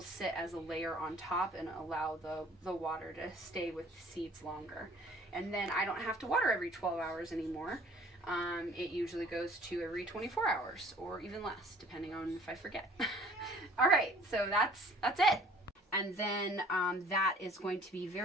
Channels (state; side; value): normal; both; correlation 0.53